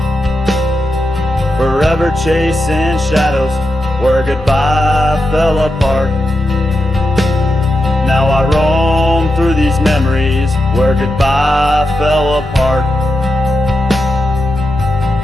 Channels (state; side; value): normal; both; correlation 0.88